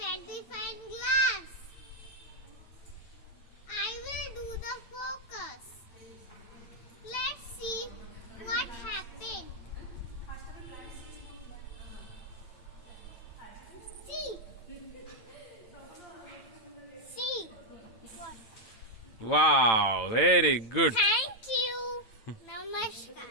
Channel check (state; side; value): late; right; 8.9 ms